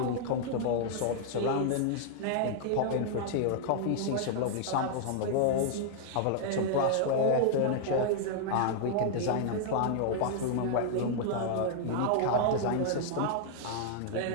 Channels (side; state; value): both; different; correlation -0.01